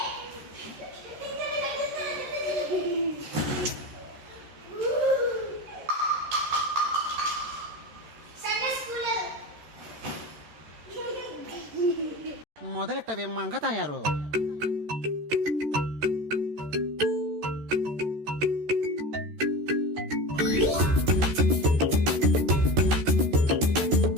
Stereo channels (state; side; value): late; left; 13 ms